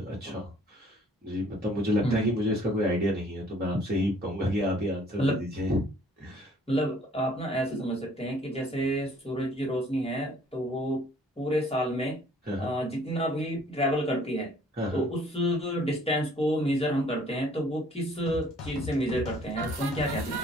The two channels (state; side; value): normal; both; correlation 0.58